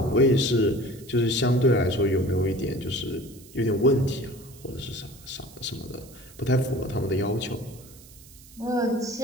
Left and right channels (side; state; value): right; noise; hiss, 22 dB below the sound